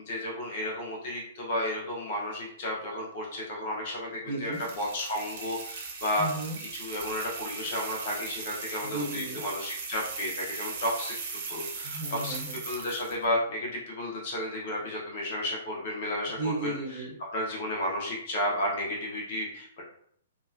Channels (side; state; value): both; inverted; correlation -0.36